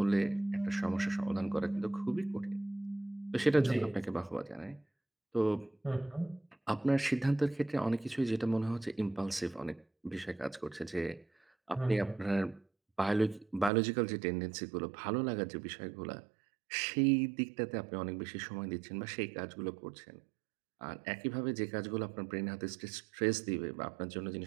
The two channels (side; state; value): left; drops out; at 13.7 s